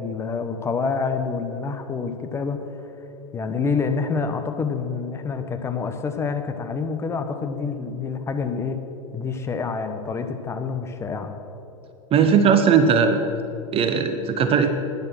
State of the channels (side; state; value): both; normal; correlation 0.28